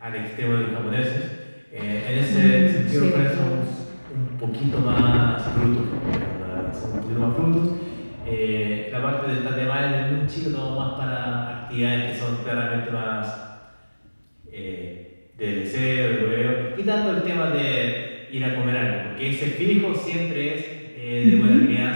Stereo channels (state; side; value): inverted; both; correlation -1.00